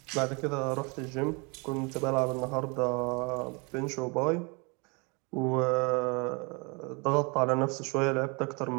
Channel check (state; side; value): quieter; left; 30.6 dB